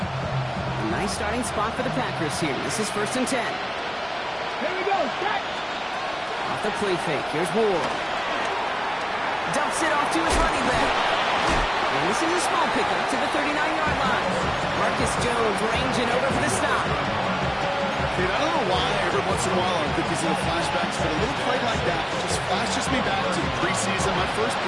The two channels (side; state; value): both; identical; correlation 1.00